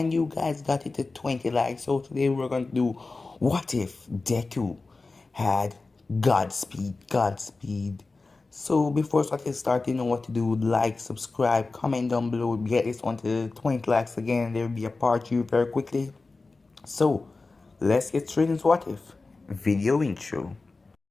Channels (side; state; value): right; quieter; 3.7 dB